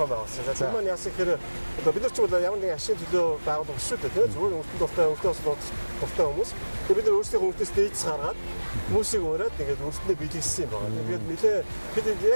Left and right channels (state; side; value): inverted; both; correlation -1.00